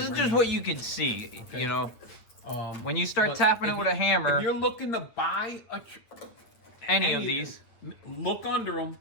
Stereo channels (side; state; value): right; late; 9.1 ms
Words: is just what you can see, you know. When you start tapping it with a hammer. If you're looking to buy any of these, look under them,